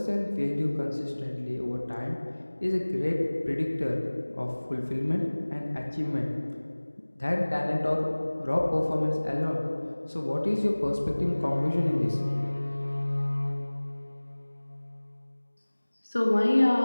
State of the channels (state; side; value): inverted; both; correlation -1.00